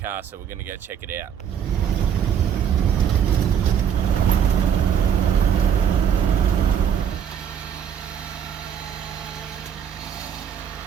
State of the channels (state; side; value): quieter; left; 8.4 dB